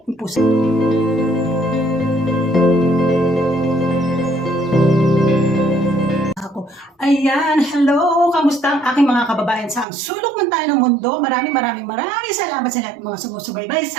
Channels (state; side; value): drops out; left; at 9.9 s